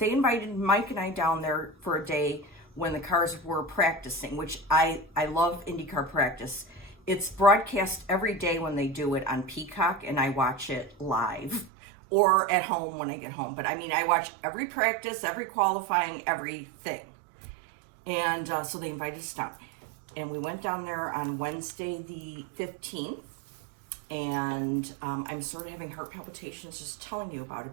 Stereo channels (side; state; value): left; drops out; at 11.7 s